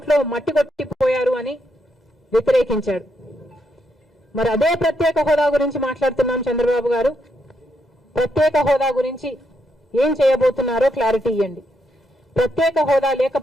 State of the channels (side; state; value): both; normal; correlation 0.79